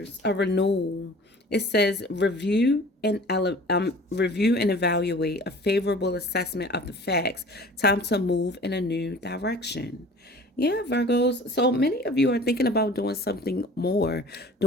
a renewal. It says review and evaluate a favorable assessment of the facts. Time to move in a new direction. Yeah, Virgos. So many of you are thinking about doing something more,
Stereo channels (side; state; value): both; normal; correlation 0.45